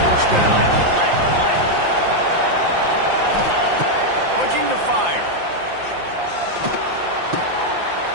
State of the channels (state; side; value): late; left; 5.8 ms